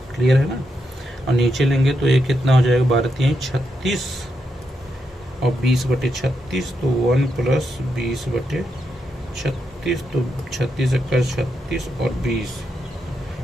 क्लियर है ना। और नीचे लेंगे तो ये कितना हो जाएगा? 12 3 36 और 20 बटे 36, तो 1 प्लस 20 बटे 36, तो 36 का 36 और 20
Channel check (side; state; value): both; normal; correlation 0.83